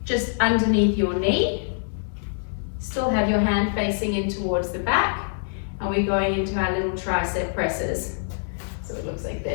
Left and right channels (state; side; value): silent; right; digital silence